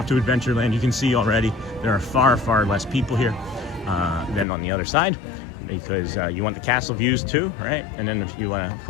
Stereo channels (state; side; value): drops out; right; at 4.5 s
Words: to Adventureland, you can see already there are far, far less people here than on the other side, because you want the castle views too, right? And then if you want to, of